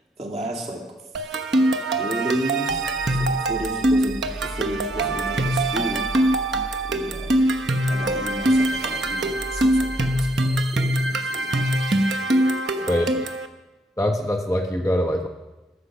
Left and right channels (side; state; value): both; normal; correlation 0.70